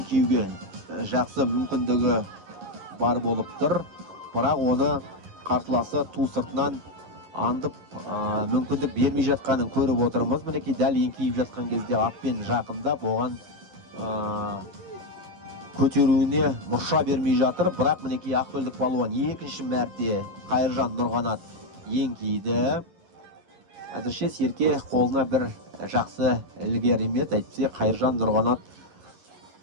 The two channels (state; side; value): late; left; 11 ms